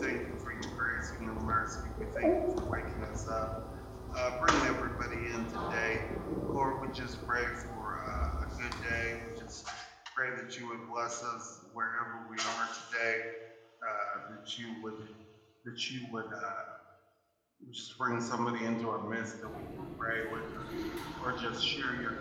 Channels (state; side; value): identical; both; correlation 1.00